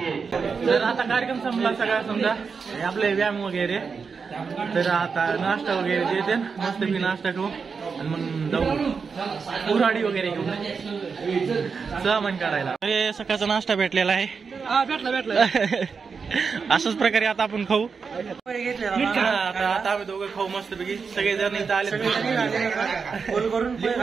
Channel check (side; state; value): left; quieter; 5.4 dB